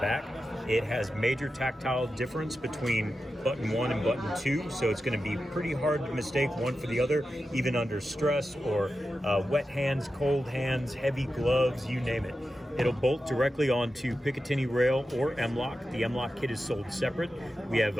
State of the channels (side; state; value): both; normal; correlation 0.91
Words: It has major tactile difference between button 1 and button 2, so it's going to be pretty hard to mistake one for the other, even under stress or wet hands, cold hands, heavy gloves, you name it. It'll bolt directly onto Picatinny rail or M-LOK. The M-LOK kit is sold separate. We